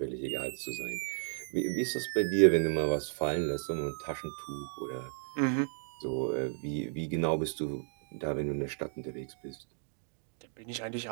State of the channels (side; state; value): left; silent; 55 dB below the other